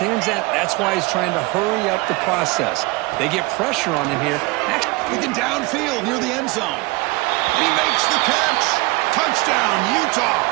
that. That's why he's trying to hurry up the process. They get pressure on him here. Looking downfield near the end zone. And he makes the catch. Touchdown, Utah.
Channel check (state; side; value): quieter; left; 23.6 dB